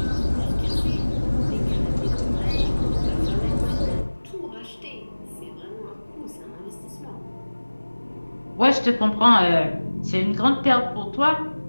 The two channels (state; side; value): inverted; both; correlation -1.00